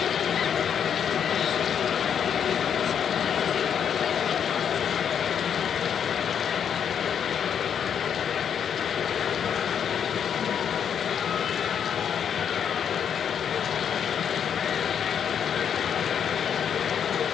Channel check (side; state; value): right; quieter; 8.1 dB